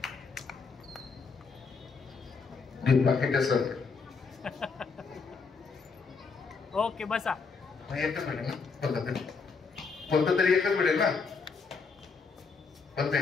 बाकीच्या सर ओके बसा. एकच भेटेल ना? कोणतं तरी एकच भेटेल ना? पण ते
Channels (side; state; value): right; quieter; 4.9 dB